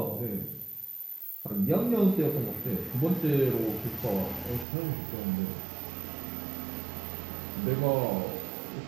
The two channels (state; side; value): drops out; left; at 4.7 s